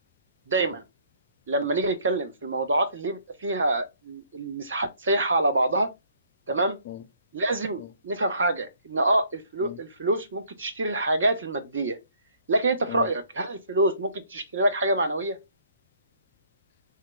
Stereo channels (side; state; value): both; inverted; correlation -0.62